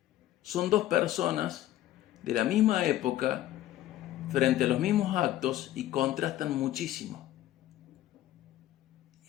Son dos personas de la misma época frente a los mismos actos y contrastan muchísimo.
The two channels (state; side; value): quieter; right; 13.9 dB